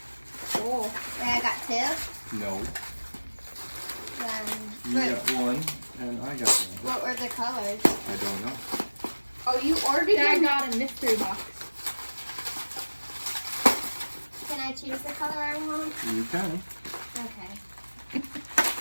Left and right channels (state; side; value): inverted; both; correlation -1.00